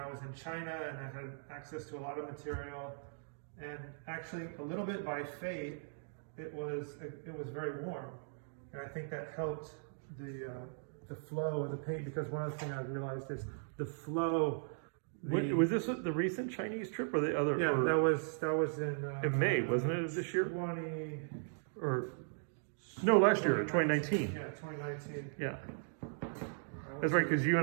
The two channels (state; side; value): silent; left; digital silence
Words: was in China, and I had access to a lot of material, and actually a little bit by fate, it was very warm, and I think that helped the flow of the paint, because one of the things I realized is the flow. Was this the recent Chinese trip or the other? Yeah, that was in May, wasn't it, this year? Last year, 2019. Yeah, 2019. Yeah, that's right, because you